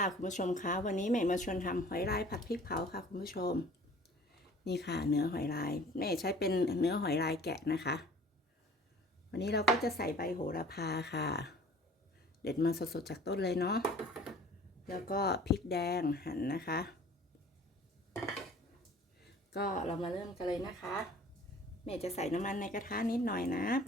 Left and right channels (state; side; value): normal; both; correlation 0.49